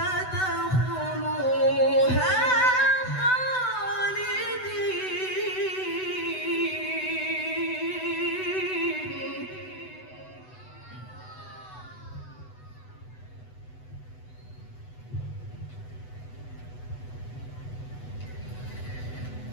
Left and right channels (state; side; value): late; right; 8.0 ms